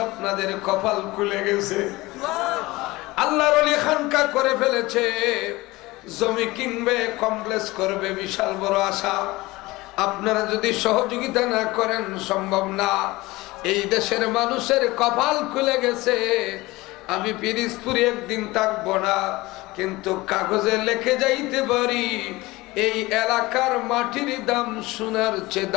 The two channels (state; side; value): quieter; right; 20.5 dB